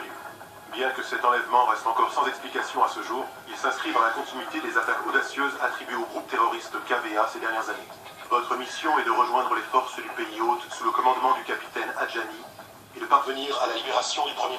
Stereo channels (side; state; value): both; identical; correlation 1.00